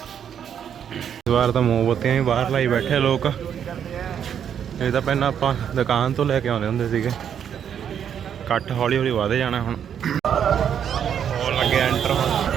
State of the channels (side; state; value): left; quieter; 8.6 dB